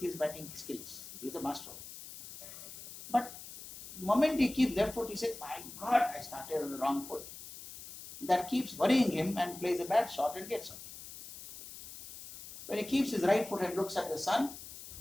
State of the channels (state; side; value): noise; left; hiss, 13 dB below the sound